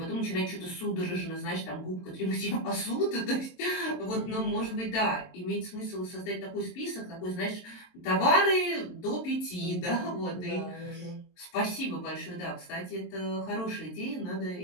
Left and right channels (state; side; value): late; right; 22 ms